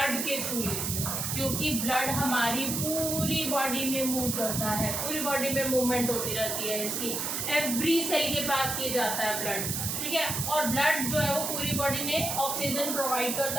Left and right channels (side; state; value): right; noise; hiss, 1 dB below the sound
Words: के थ्रू लेती है, क्योंकि ब्लड हमारी पूरी बॉडी में मूव करता है, पूरी बॉडी में मूवमेंट होती रहती है इसकी, एवरी सेल के पास ये जाता है ब्लड, ठीक है। और ब्लड जो है वो पूरी बॉडी में ऑक्सीजन प्रोवाइड